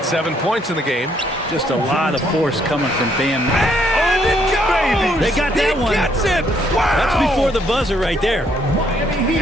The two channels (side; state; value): both; normal; correlation 0.70